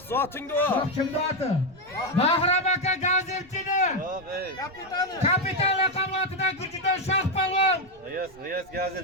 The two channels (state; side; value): noise; right; rumble, 27 dB below the sound